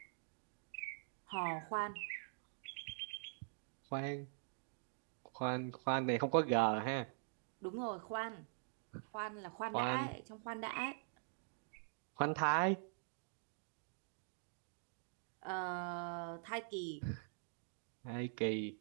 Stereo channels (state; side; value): silent; left; digital silence